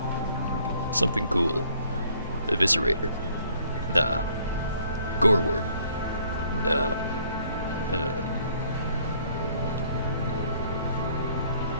something cool. Eviscerator. Nah. Goreworm. Nah.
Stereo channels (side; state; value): both; inverted; correlation -0.62